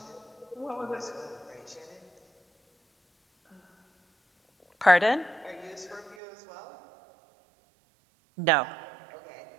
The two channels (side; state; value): left; drops out; at 6.2 s